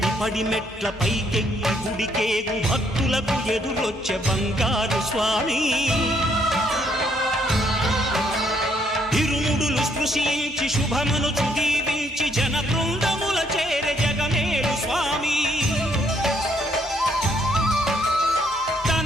పడిమెట్ల పైకెక్కి గుడికేగు భక్తులకు ఎదురొచ్చే బంగారు స్వామి. ఇరుముడులు స్పృశించి శుభమనుచు దీవించి జన బృందముల చేరే జగమేలు స్వామి. తన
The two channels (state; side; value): normal; both; correlation 0.70